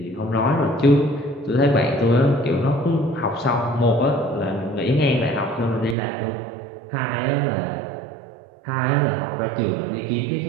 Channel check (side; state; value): left; drops out; at 6.0 s